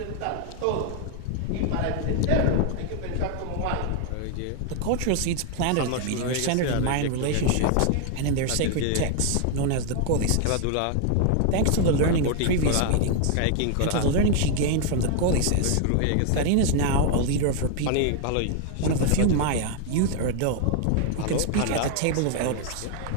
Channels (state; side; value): different; both; correlation 0.00